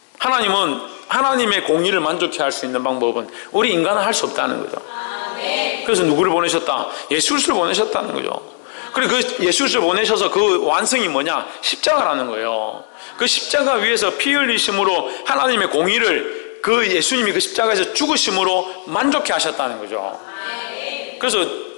하나님은 하나님의 공의를 만족해 할 수 있는 방법은 우리 인간은 할 수 없다는 거죠. 그래서 누구를 보내셨다? 예수 그리스도를 보내셨다는 거죠. 그리고 그 예수 그리스도를 보내셔서 그 완성이 뭐냐? 십자가라는 거예요. 그 십자가 위에서 피 흘리심으로 하나님의 공의를 그 예수님이 그 십자가에서 죽으심으로 만족해 하셨다는 거죠. 그래서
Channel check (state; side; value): silent; right; 56 dB below the other